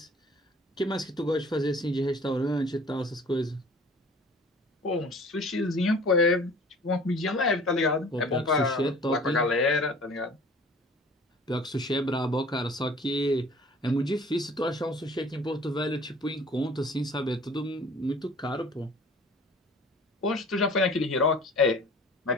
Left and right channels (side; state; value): both; normal; correlation 0.48